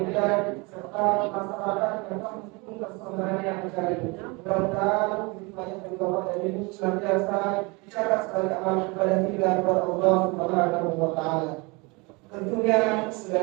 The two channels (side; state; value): left; quieter; 27.5 dB